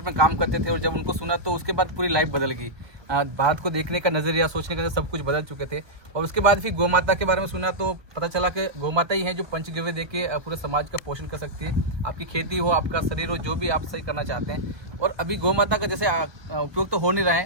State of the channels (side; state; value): left; late; 1.2 ms